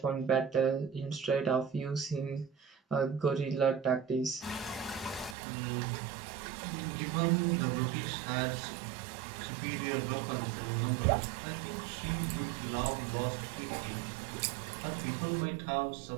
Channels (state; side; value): drops out; left; at 5.4 s